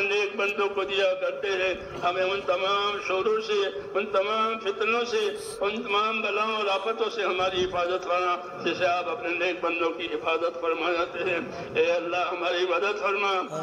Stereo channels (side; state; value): both; identical; correlation 1.00